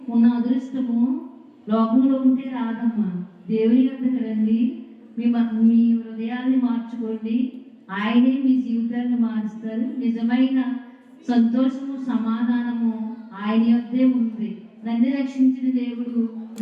ఉన్న అదృష్టము లోకంలో ఉంటే రాదమ్మా. దేవుని వద్దకు రండి, మీ హృదయాన్ని మార్చుకోండి. ఆయనే మీ జీవితాన్ని మారుస్తారు. నిజమైన సంతోషము సమాధానము ఆయన వద్దే ఉంది. నన్ను రక్షించిన దేవుడు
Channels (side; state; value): both; identical; correlation 1.00